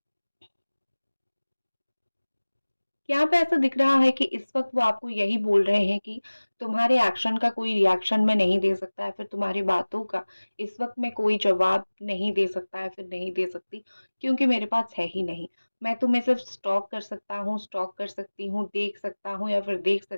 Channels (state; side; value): inverted; both; correlation -1.00